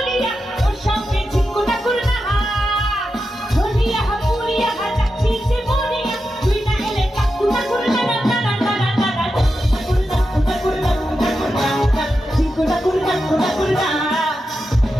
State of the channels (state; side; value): normal; both; correlation 0.89